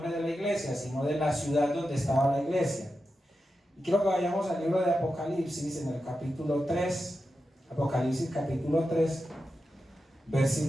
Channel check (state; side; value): normal; both; correlation 0.90